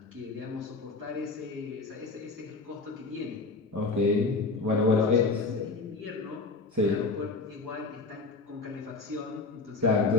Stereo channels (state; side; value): quieter; right; 3.8 dB